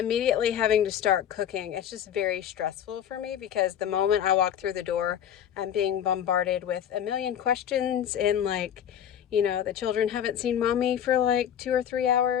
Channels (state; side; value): quieter; right; 9.6 dB